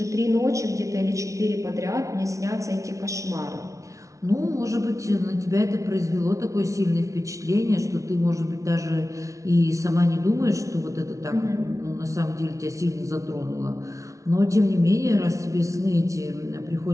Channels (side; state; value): left; late; 0.15 ms